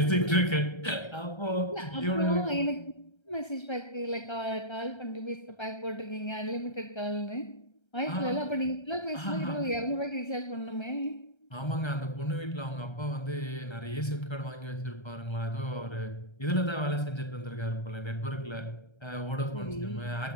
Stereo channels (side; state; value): right; late; 1.3 ms